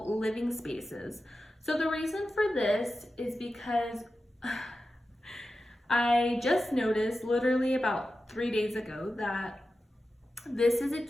living spaces. So the reason for this is because I just noticed literally about 3 days ago that this is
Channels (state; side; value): normal; both; correlation 0.92